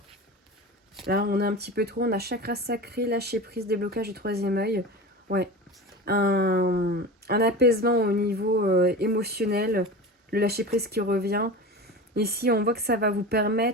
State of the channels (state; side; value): normal; both; correlation 0.31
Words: Là, on a un petit peu trop, on a chakra sacré, lâcher prise, déblocage du troisième œil. Ouais. Un apaisement au niveau émotionnel, le lâcher prise qui revient. Ici, on voit que ça va vous